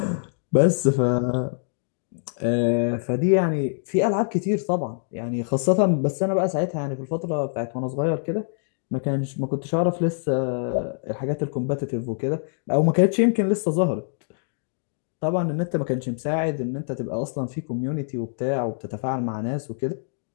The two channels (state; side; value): silent; right; digital silence